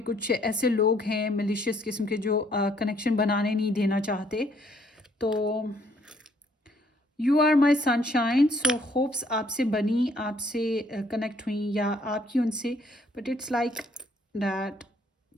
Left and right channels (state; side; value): normal; both; correlation 0.66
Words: कुछ ऐसे लोग हैं मिलिशियस किस्म के जो कनेक्शन बनाने नहीं देना चाहते। तो you are my sunshine, so hopes आपसे बनी, आपसे कनेक्ट हुई या आपकी उनसे। But it's like that